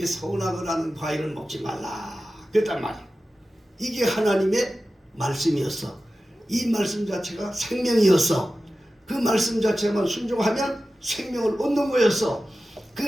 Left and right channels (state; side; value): normal; both; correlation 0.94